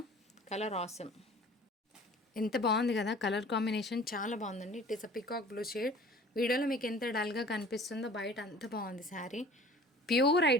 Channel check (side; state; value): both; normal; correlation 0.46